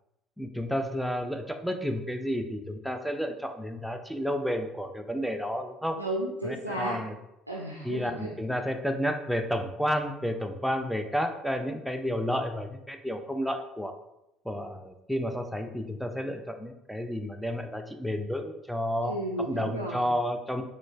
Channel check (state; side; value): normal; both; correlation 0.78